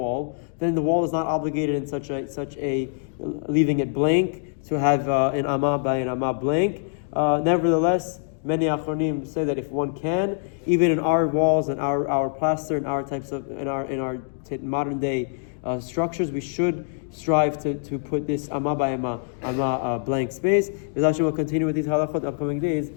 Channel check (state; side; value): silent; right; digital silence